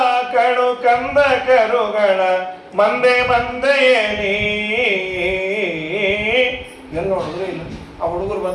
ಕಡು ಕಂದ ಕರುಗಳ ಮಂದೆಯಲ್ಲಿ. ಎಲ್ಲಿ ನೋಡಿದ್ರು ಇಲ್ಲ. ಆ ಹುಡುಗರು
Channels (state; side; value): identical; both; correlation 1.00